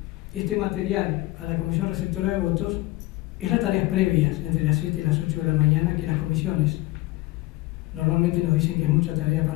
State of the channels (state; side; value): quieter; right; 19.2 dB